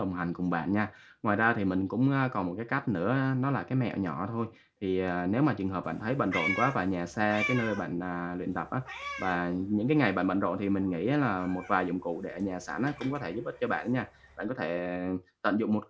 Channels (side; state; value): both; identical; correlation 1.00